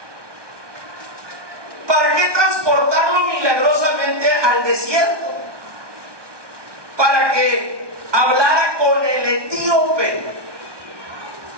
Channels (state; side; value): late; left; 1.2 ms